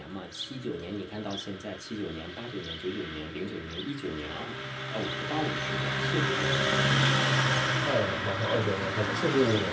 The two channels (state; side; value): identical; both; correlation 1.00